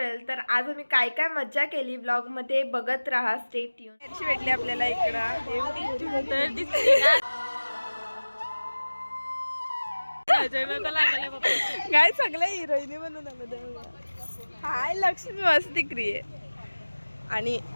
तर आज आम्ही काय काय मज्जा केली व्लॉग मध्ये बघत राहा. Stay tune. कशी भेटली आपल्याला इकडं काय सगळ्या हिरोईनी म्हणून आलं. हाय लक्ष्मी मस्ती क्रिये. आणि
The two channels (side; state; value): both; inverted; correlation -1.00